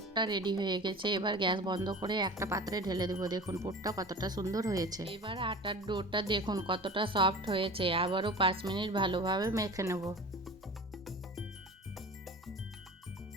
রেডি হয়ে গেছে। এবার গ্যাস বন্ধ করে একটা পাত্রে ঢেলে দেবো। দেখুন পুরটা কতটা সুন্দর হয়েছে। এবার আটার ডোটা দেখুন কতটা সফট হয়েছে। আবারও 5 মিনিট ভালোভাবে মেখে নেব।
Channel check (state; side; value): normal; both; correlation 0.36